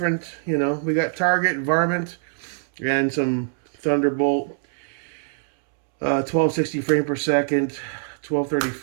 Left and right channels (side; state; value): left; silent; 63 dB below the other